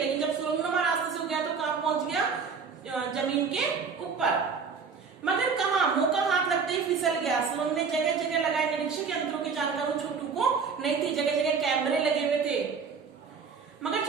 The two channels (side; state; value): left; quieter; 5.5 dB